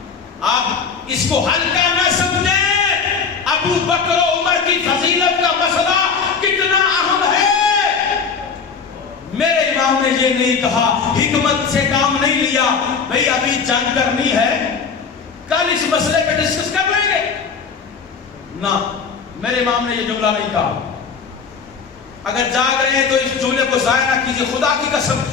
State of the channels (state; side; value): quieter; right; 5.7 dB